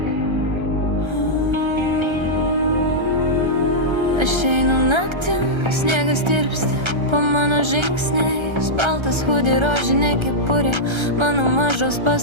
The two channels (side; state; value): left; late; 1.3 ms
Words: Aš einu naktim, sniegas tirpsta po mano žingsniais. Baltas hudi, rožinė kepurė, mano mažos